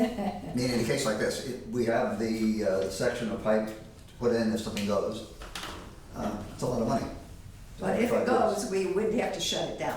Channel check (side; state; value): both; identical; correlation 1.00